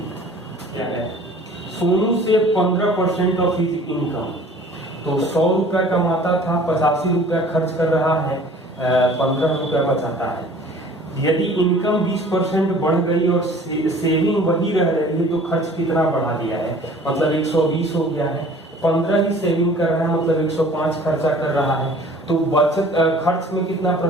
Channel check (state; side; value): normal; both; correlation 0.49